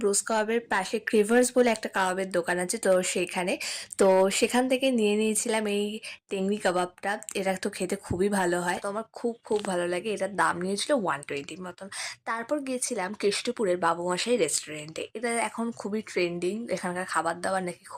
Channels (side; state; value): both; identical; correlation 1.00